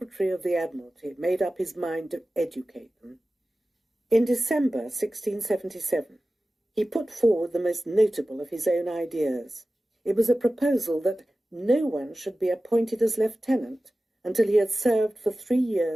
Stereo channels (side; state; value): both; normal; correlation 0.95